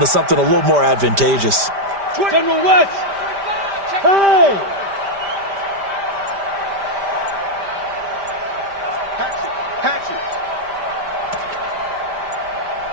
something a little more advantageous. General West. Hey!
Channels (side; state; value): left; late; 5.1 ms